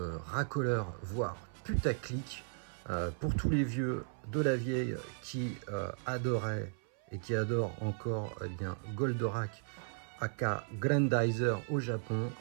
racoleur, voire putaclic, pour tous les vieux de la vieille qui adoraient et qui adorent encore bien Goldorak aka Grandizer au Japon.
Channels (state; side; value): silent; left; 54 dB below the other